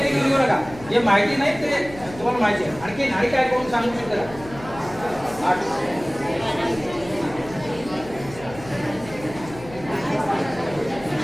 ते लिहून घेऊ नका. जे माहिती नाही ते तुम्हाला माहिती आहे. आणि काय कोण सांगू शकता? आर्ट्स.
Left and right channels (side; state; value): left; noise; hum, 16 dB below the sound